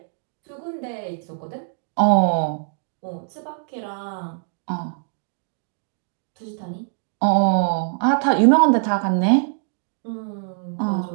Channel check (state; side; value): silent; left; digital silence